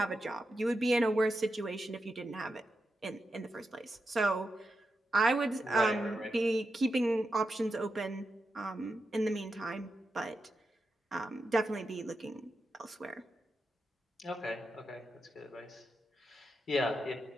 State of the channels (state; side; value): normal; both; correlation 0.88